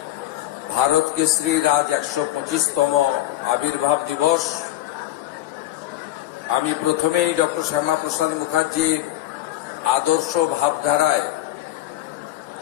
ভারত কেশরীর আজ ১২৫তম আবির্ভাব দিবস। আমি প্রথমেই ডক্টর শ্যামাপ্রসাদ মুখার্জির আদর্শ ভাবধারায়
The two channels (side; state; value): right; quieter; 14.7 dB